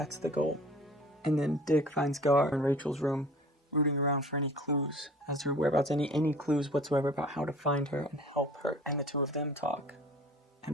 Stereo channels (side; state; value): both; normal; correlation 0.46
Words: the goal. And then Dick finds Gar in Rachel's room, rooting around for any clues as to her whereabouts, any clues whatsoever about how to find her and help her. And the two of them talk